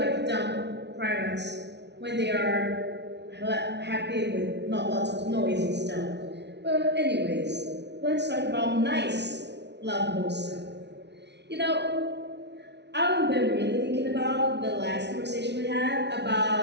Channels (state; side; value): late; left; 0.50 ms